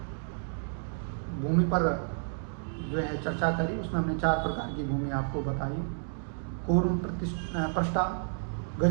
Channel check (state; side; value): silent; left; digital silence